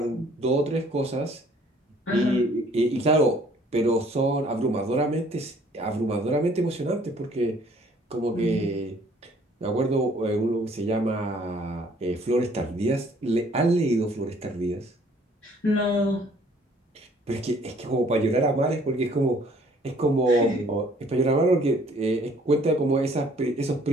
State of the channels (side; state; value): both; normal; correlation 0.59